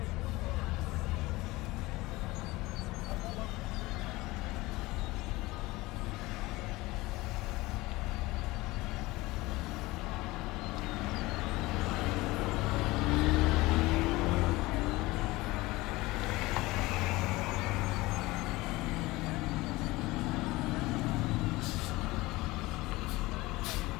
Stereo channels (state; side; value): quieter; right; 20.4 dB